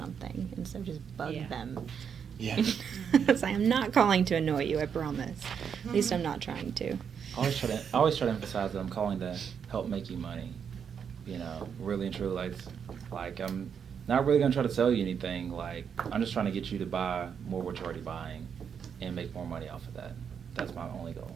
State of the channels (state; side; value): quieter; left; 7.3 dB